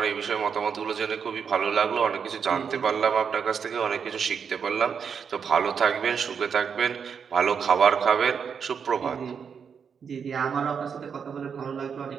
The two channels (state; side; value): quieter; left; 6.7 dB